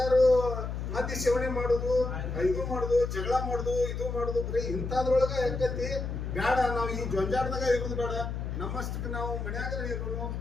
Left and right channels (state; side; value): noise; left; hum, 4 dB below the sound